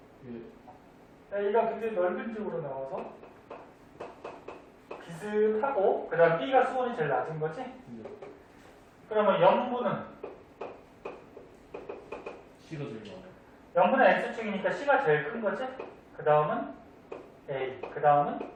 A가 굉장히 넓은 쪽으로 나와서 비슷하고 그 다음 B가 수온이 제일 낮은 거지? 네. 그러면 염분은 C가 제일 많아요. 염분은 X축이니까 C가 제일 큰 거지? 그 다음은 A, 그 다음은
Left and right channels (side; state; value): both; identical; correlation 1.00